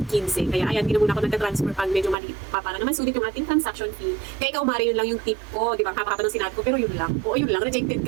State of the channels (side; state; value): left; drops out; at 2.1 s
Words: Kaya ayan, hindi na muna ako nagta-transfer pag medyo maliit pa para naman sulit yung ating transaction fee. Kaya ikaw, Mari, yun lang yung tip ko. Di ba? Hapa-hapa ng sinabi ko, pero yun lang. Oo, yun lang. Rejected